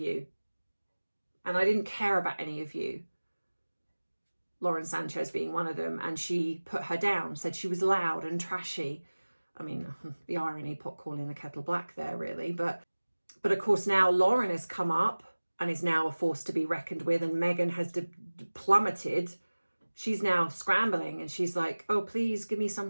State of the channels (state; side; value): inverted; both; correlation -1.00